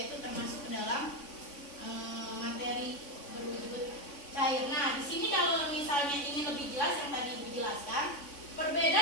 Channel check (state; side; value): late; right; 3.5 ms